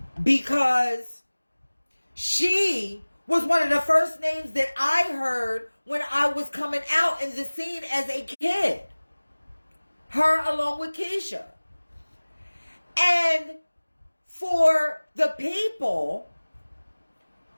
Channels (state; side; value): inverted; both; correlation -1.00